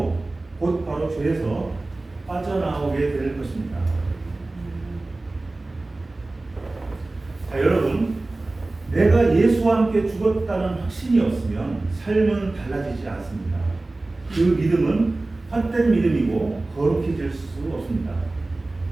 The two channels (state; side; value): quieter; left; 3.0 dB